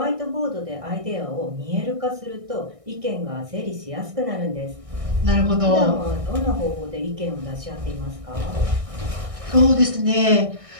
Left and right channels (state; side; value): late; left; 1.6 ms